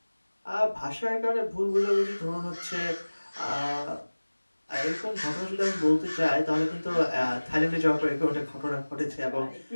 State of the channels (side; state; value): both; inverted; correlation -1.00